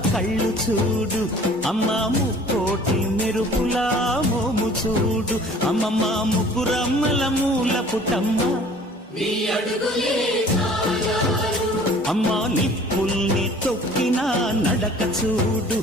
కళ్ళు చూడు, అమ్మా ముక్కోటి మెరుపులా మోము చూడు, అమ్మమ్మ ముగ్గురమ్మల మూల పుటమ్మ అమ్మా నిప్పుల్ని తొక్కిన నడక చూడు,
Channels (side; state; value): both; normal; correlation 0.50